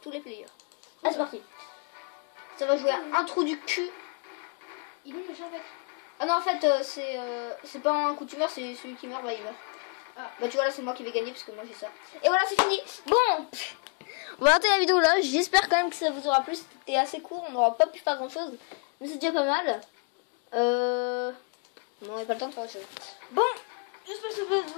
les players. Ah, c'est parti. Ça va jouer à un trou du cul. Il est méchant en fait. Ah non, en fait, c'est pas un coup de tumeur, c'est celui qui meurt, bah il meurt. Ah. Bah tu vois, là, c'est moi qui vais gagner parce que moi j'ai ça. Et voilà, c'est fini. Bon, on va arrêter la vidéo là. J'espère quand même que ça vous aura plu. C'était assez court, on n'aura pas pu faire grand chose. Mais c'est déjà pas mal. Non, on n'a pas le temps de faire autre chose. Bon, j'espère que ça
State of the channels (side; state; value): right; quieter; 34.6 dB